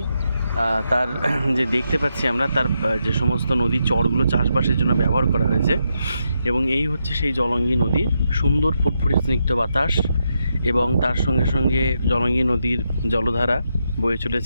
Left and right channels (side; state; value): both; inverted; correlation -0.83